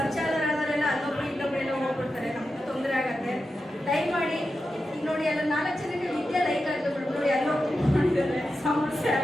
ಪರಿಚಯ ಆದವರೆಲ್ಲ ಅಲ್ಲೊಬ್ರು ಇಲ್ಲೊಬ್ಬರೆಲ್ಲ ಹೋಗ್ಬಿಡ್ತಾರೆ, ನಮಗೂ ತೊಂದರೆ ಆಗುತ್ತೆ. ದಯಮಾಡಿ ಈಗ ನೋಡಿ, ಎಲ್ಲ 4 ಜನಕ್ಕೆ ವಿದ್ಯೆ ಲೈಕ್ ಆಗುತ್ತೆ ನೋಡಿ, ಎಲ್ಲೋ ಮಾಡಿದ್ದಾರೆ, ಸಮಸ್ಯೆ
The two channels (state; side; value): normal; both; correlation 0.90